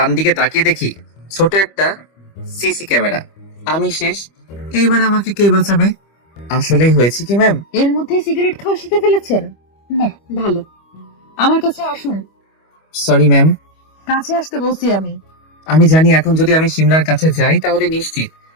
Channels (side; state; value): right; late; 25 ms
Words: দিকে তাকিয়ে দেখি ছোট একটা সিসি ক্যামেরা। আমি শেষ। এইবার আমাকে কে বাঁচাবে? আসলেই হয়েছে কি ম্যাম? এর মধ্যে সিগারেট খাওয়া শিখে ফেলেছেন? বাহ, ভালো। আমার কাছে আসুন। Sorry ma'am. কাছে আসতে বলছি আমি। আমি জানি এখন যদি আমি শিমলার কাছে যাই তাহলে নিশ্চিত